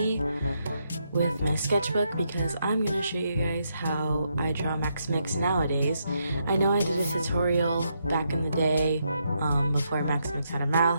with my sketchbook because I'm going to show you guys how I draw Maximix nowadays. I know I did a tutorial back in the day before Maximix had a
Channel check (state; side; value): inverted; both; correlation -0.79